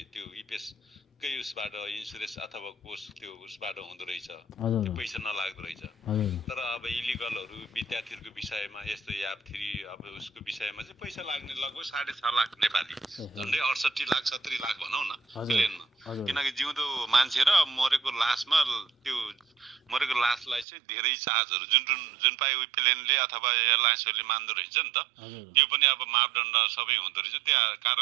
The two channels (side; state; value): left; drops out; at 20.7 s